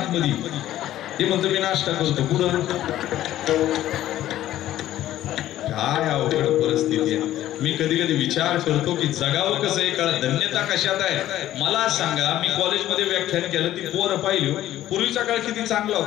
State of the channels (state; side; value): quieter; right; 13.4 dB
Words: ते म्हणतो मी नाश्ता करतो. कुठं काय अवघड परिस्थिती आहे. मी कधी कधी विचार करतो की जगावं कसं आहे, कळत धन्यता कशात आहे. मला सांगा, मी कॉलेजमध्ये व्याख्यान केलं, ती पोरं पाहिली. पूर्वीचा काळ किती चांगला